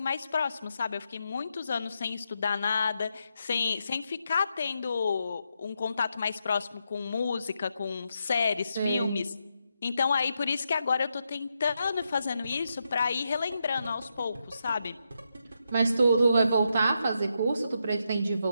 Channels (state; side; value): inverted; both; correlation -0.83